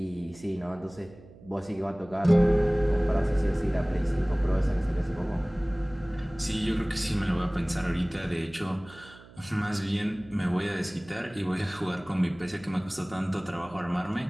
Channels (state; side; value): noise; right; hum, 21 dB below the sound